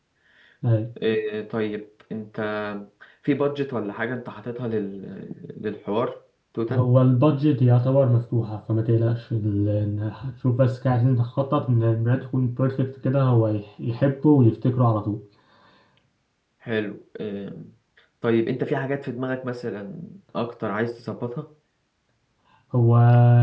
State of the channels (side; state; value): both; identical; correlation 1.00